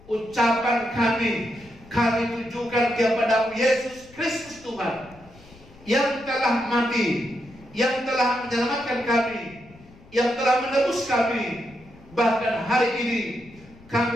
ucapan kami tujukan kepada Yesus Kristus Tuhan, yang telah mati, yang telah menyelamatkan kami, yang telah menebus kami. Bahkan hari ini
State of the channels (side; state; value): left; noise; rumble, 24 dB below the sound